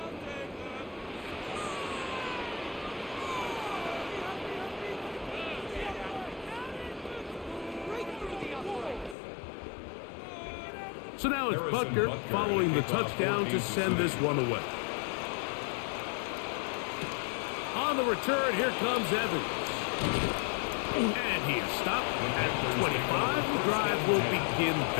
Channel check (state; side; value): drops out; right; at 9.2 s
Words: So now it's Butker following the touchdown to send this one away. On the return, here comes Evans. And he is stopped at 25. The drive will begin